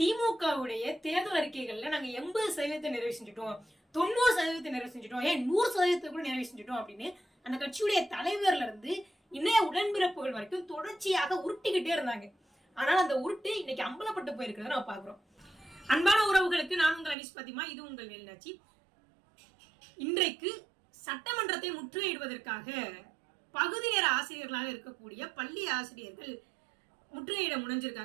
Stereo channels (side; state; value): left; drops out; at 17.2 s